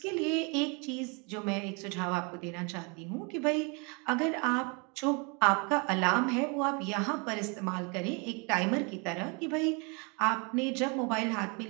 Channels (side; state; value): left; quieter; 32.4 dB